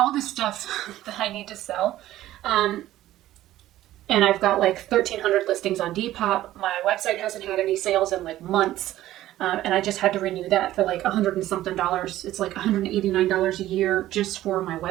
this stuff that I need to sell. And I've got like 1,300 listings on Depop. My website hasn't had any sales in like months. And I just had to renew that for like $100 and something. It's like $189 a year just for my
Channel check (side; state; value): left; quieter; 14.3 dB